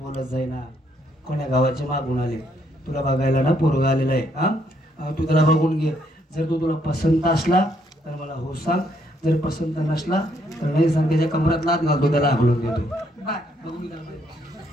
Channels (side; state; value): both; normal; correlation 0.71